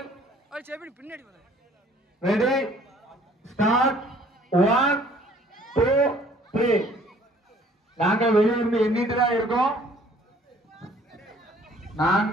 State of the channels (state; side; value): normal; both; correlation 0.57